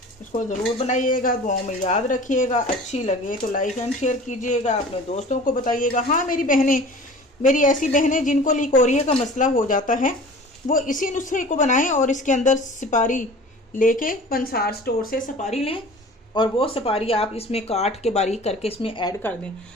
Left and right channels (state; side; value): normal; both; correlation 0.42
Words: इसको ज़रूर बनाइएगा, दुआओं में याद रखिएगा। अच्छी लगे तो लाइक एंड शेयर कीजिएगा, अपने दोस्तों को बताइएगा। हाँ, मेरी ऐसी बहनें जिनको लिकोरिया का मसला हो जाता है, वो इसी नुस्खे को बनाएं और इसके अंदर सुपारी लेके पंसार स्टोर से सुपारी लें और वो सुपारी आप इसमें काट के बारीक करके इसमें ऐड कर दें,